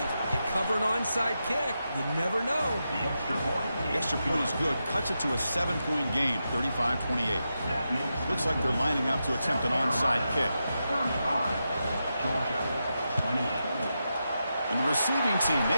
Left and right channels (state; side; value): inverted; both; correlation -0.88